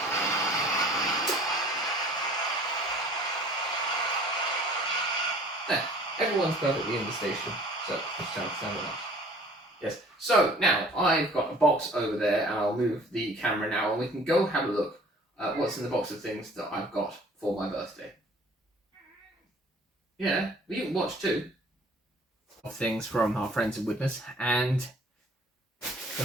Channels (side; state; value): both; normal; correlation 0.51